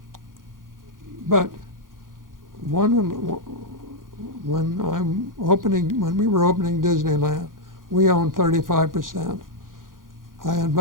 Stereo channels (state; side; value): late; left; 0.90 ms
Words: But when we were opening Disneyland, we owned 35%. I